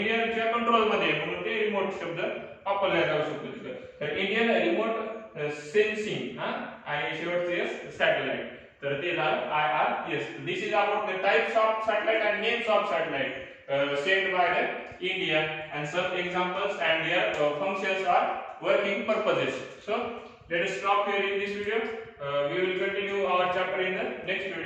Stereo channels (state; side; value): identical; both; correlation 1.00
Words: कंट्रोल मध्ये म्हणून ते रिमोट शब्द वापरला जाऊ शकतो तिथं. तर इंडियन रिमोट सेन्सिंग आणि शेवटचे सॅटेलाइट, तर ते झालं IRS. This is about the types of satellite and names of satellite sent by the India, and some examples and their functions are working purposes. So let us stop here in this video. We will continue our chapter in the next